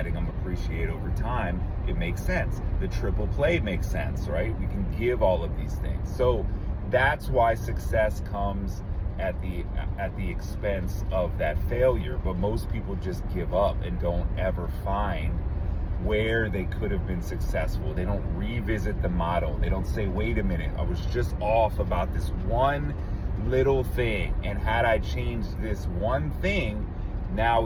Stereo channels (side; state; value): both; identical; correlation 1.00